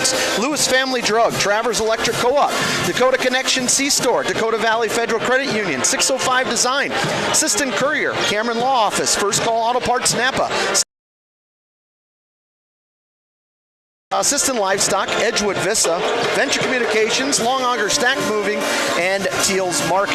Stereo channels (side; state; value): both; identical; correlation 1.00